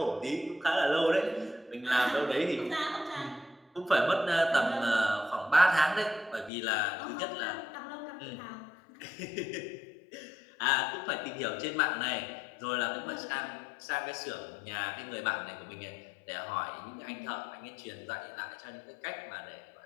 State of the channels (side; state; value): right; drops out; at 6.5 s